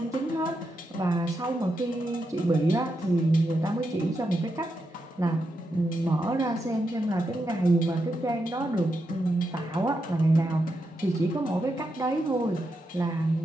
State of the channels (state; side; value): normal; both; correlation 0.85